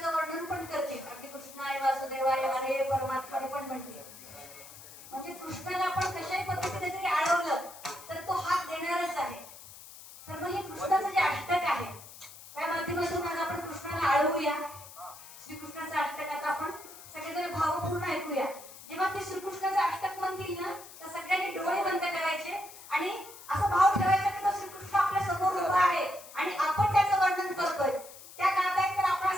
वर्णन पण करते. अगदी कृष्णाय वासुदेवाय हरे परमात्माने पण म्हटले. म्हणजे कृष्णाला आपण कशाही पद्धतीने जरी आळवलं तर तो हात देणारच आहे. तर मग हे कृष्णाचं जे अष्टक आहे त्या माध्यमातून आज आपण कृष्णाला आळवूया. श्रीकृष्णाचं अष्टक आता आपण सगळेजण भावपूर्ण ऐकूया. जेव्हा ते श्रीकृष्णाचं अष्टक म्हणतील ना तर सगळ्यांनी डोळे बंद करायचे आणि असा भाव ठेवायचा की तो श्रीकृष्ण आपल्या समोर उभा आहे आणि आपण त्याचं वर्णन करतोय. त्या गात आहेत तर आपण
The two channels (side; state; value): left; noise; hiss, 17 dB below the sound